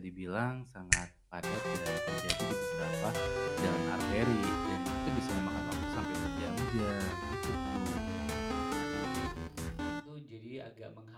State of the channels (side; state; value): both; identical; correlation 1.00